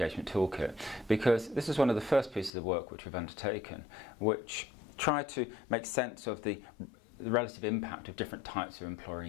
Toolkit because this is one of the first pieces of work which we've undertaken, which tried to make sense of the relative impact of different types of employer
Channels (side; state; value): right; drops out; at 2.5 s